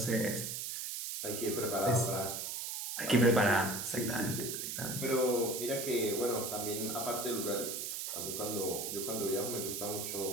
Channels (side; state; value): right; noise; hiss, 4 dB below the sound